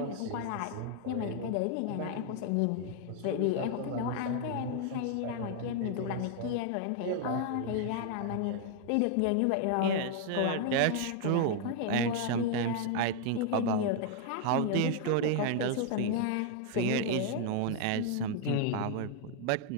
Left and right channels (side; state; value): both; different; correlation 0.00